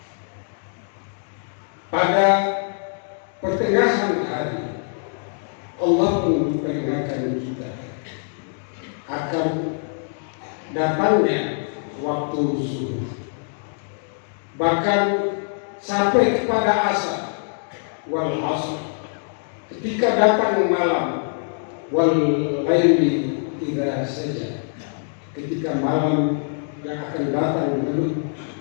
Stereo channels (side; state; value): right; silent; digital silence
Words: Pada pertengahan hari, Allah pun memperingatkan kita akan datangnya waktu zuhur. Bahkan sampai kepada asar, wal asr, ketika datang malam, wal laili idza saja, ketika malam yang akan datang